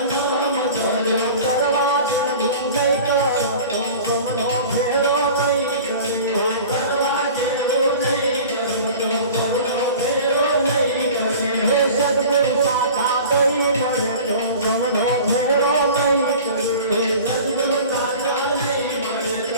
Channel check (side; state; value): both; inverted; correlation -0.41